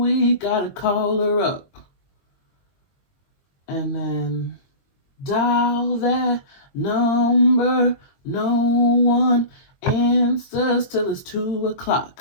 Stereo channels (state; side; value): late; right; 22 ms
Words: weak, gotta call her up. And then, dial that number, no one answers till it's 2